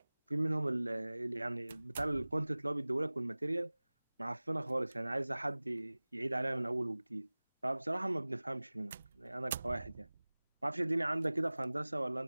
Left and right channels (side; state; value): both; inverted; correlation -0.99